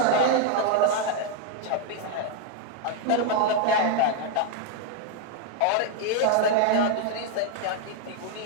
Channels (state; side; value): different; both; correlation 0.00